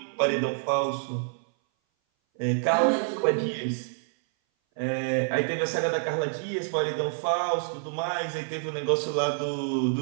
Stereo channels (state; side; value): silent; left; 58 dB below the other